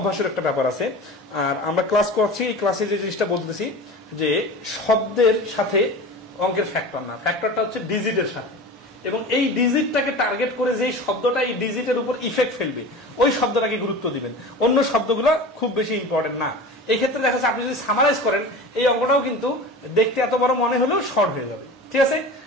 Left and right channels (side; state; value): both; normal; correlation 0.34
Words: একটা ব্যাপার আছে। আর আমরা ক্লাস করছি, এই ক্লাসে যে জিনিসটা বলতেছি যে শব্দের সাথে অঙ্কের ফ্যাক্টর না, ফ্যাক্টরটা হচ্ছে ডিজিটের সাথে, এবং এই ডিজিটটাকে টার্গেট করে যেই শব্দটা এই ডিজিটের উপর ইফেক্ট ফেলবে ওই শব্দটাকে গুরুত্ব দিবেন, অন্য শব্দগুলো খুব বেশি ইম্পর্টেন্ট না। এই ক্ষেত্রে দেখা যাচ্ছে আপনি যদি সামারাইজ করেন এই অঙ্কটাও কিন্তু দেখতে এত বড় মনে হলেও শর্ট হয়ে যাবে, ঠিক আছে।